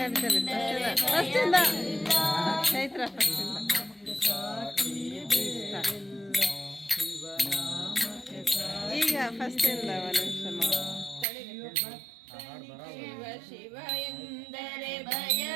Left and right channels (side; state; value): left; drops out; at 11.2 s